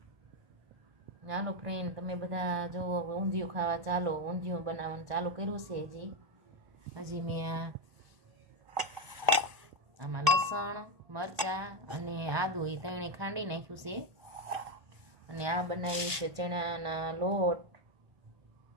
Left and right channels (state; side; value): late; left; 1.1 ms